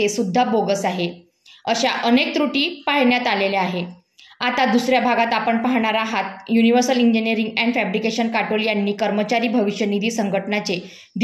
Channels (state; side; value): identical; both; correlation 1.00